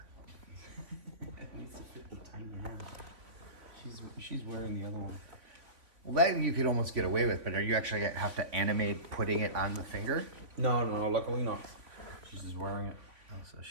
It needs to fit the tiny hand. She's wearing the other one. Well, that you could almost get away with, but are you actually have to animate putting it on the finger? No, luckily not. She's just wearing it. Oh, so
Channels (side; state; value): left; late; 3.5 ms